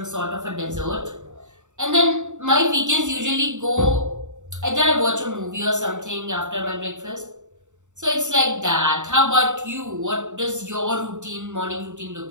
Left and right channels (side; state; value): left; late; 0.85 ms